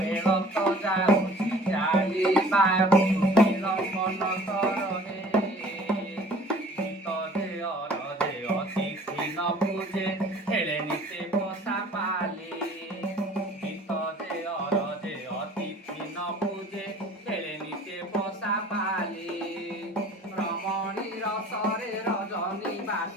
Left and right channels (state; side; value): normal; both; correlation 0.49